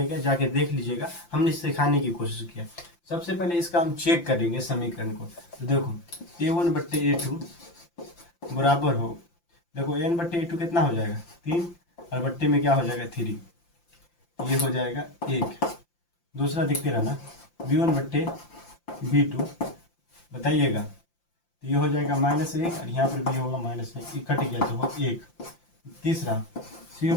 गया, जाके देख लीजिएगा, हमने सिखाने की कोशिश किया। सबसे पहले इसका हम चेक करेंगे समीकरण को, तो देखो a1/a2 बराबर हो, देखो n/a2 कितना हो जाएगा 3 और बट्टे में क्या हो जाएगा 3, ये हो जाएगा 1। दूसरा दिखते रहना b1/b2 बताइएगा, तो ये हो जाएगा -1 और यहाँ पर भी होगा -1, कट गया तो हो 1। तीसरा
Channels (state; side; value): late; right; 5.8 ms